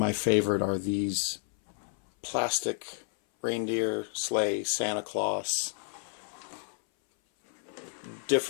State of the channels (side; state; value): right; silent; 57 dB below the other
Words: favorite are these plastic reindeer, sleigh, Santa Claus,